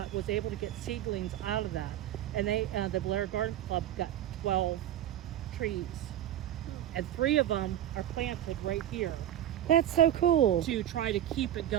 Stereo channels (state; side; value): quieter; left; 11.9 dB